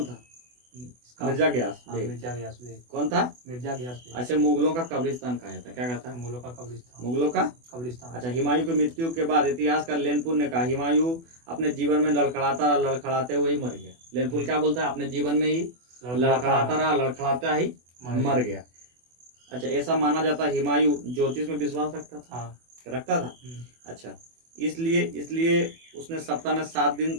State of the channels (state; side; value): late; left; 24 ms